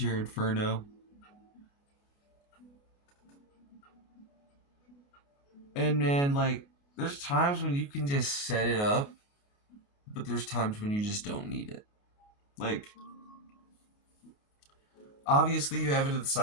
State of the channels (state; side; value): late; right; 28 ms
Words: Inferno. And man, there's times when you can just set it up, but there's times when you just don't need it. Obviously, you have it to the